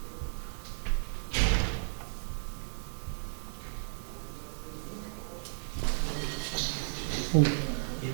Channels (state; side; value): silent; left; digital silence